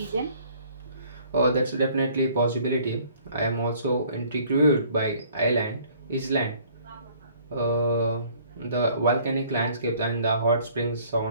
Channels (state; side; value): inverted; both; correlation -0.57